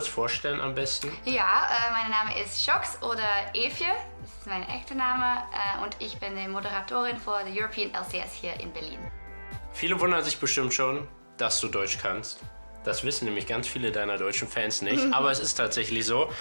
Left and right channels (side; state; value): both; inverted; correlation -1.00